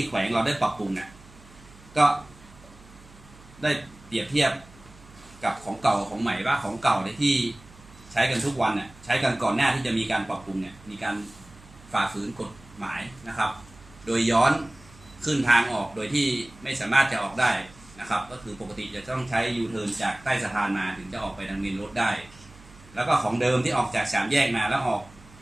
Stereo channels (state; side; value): noise; right; hum, 23 dB below the sound